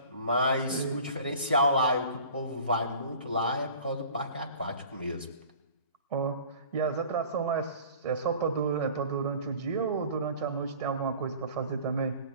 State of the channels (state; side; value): inverted; both; correlation -0.45